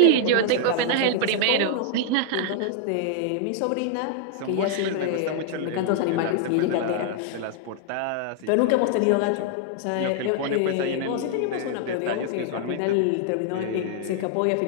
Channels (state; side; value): different; both; correlation -0.01